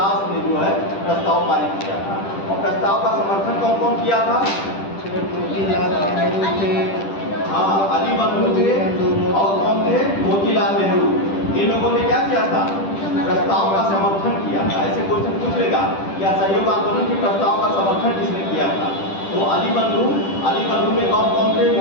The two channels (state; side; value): late; right; 10 ms